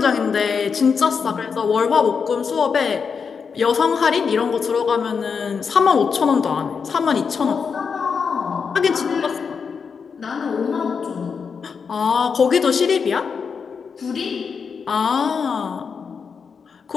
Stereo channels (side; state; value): right; quieter; 5.9 dB